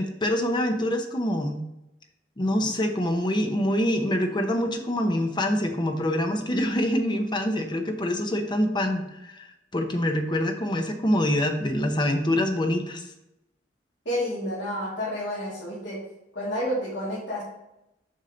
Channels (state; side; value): normal; both; correlation 0.69